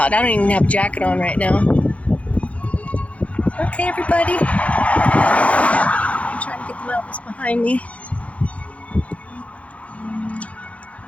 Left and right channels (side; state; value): right; late; 0.065 ms